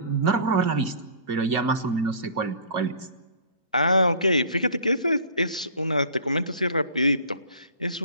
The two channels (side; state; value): both; inverted; correlation -0.45